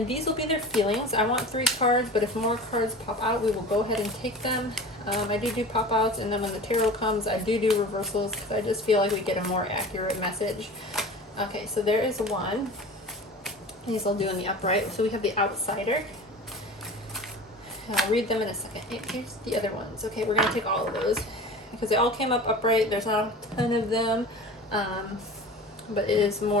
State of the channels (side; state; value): both; normal; correlation 0.36